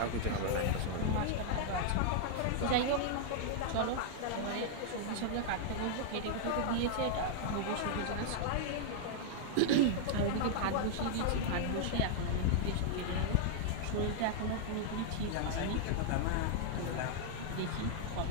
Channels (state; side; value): different; both; correlation -0.01